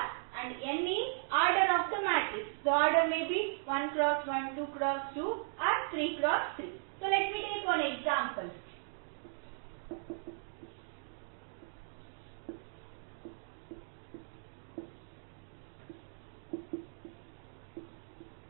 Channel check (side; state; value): left; silent; digital silence